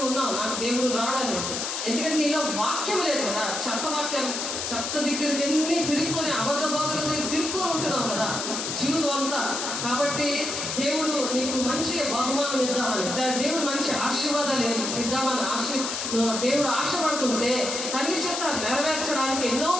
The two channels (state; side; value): noise; left; hiss, 3 dB below the sound